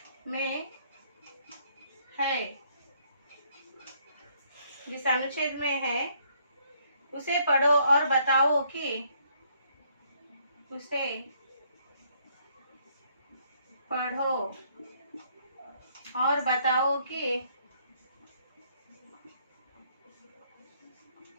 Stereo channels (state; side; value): inverted; both; correlation -0.67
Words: में है, जिस अनुच्छेद में है उसे पढ़ो और बताओ कि, उसे पढ़ो और बताओ